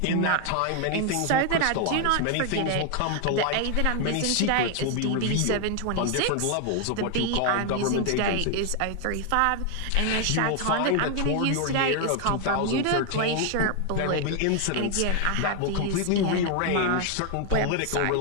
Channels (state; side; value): different; both; correlation 0.00